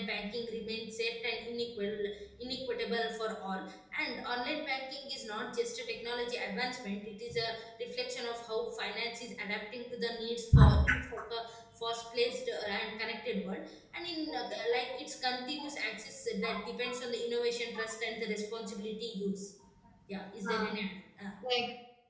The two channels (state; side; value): identical; both; correlation 1.00